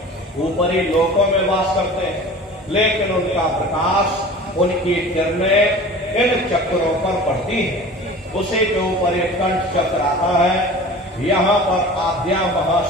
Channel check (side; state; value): both; normal; correlation 0.40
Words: ऊपरी लोकों में वास करते हैं, लेकिन उनका प्रकाश, उनकी किरणें इन चक्रों पर पड़ती है। उसी के ऊपर एक कंठ चक्र आता है। यहाँ पर आद्या